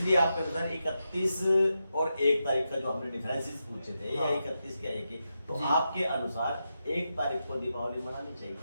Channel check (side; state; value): both; inverted; correlation -0.87